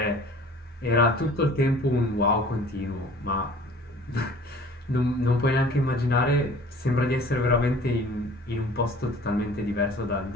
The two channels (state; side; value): normal; both; correlation 0.48